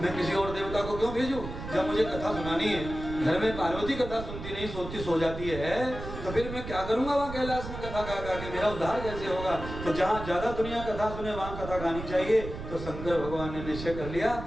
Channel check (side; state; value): right; noise; rumble, 9 dB below the sound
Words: मैं किसी और देवता को क्यों भेजूं? जब मुझे कथा सुनानी है, घर में पार्वती कथा सुनती नहीं, सोती सो जाती है, तो फिर मैं क्या करूंगा वहाँ कैलाश में कथा गा गा के? मेरा उद्धार कैसे होगा? तो जहाँ ज्यादा दुनिया कथा सुने वहाँ कथा गानी चाहिए। तो शंकर भगवान ने निश्चय कर लिया